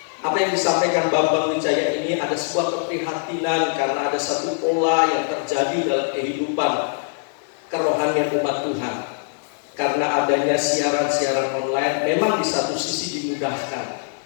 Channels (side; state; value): right; silent; digital silence